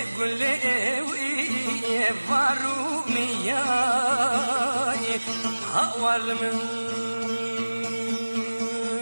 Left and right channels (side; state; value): both; inverted; correlation -1.00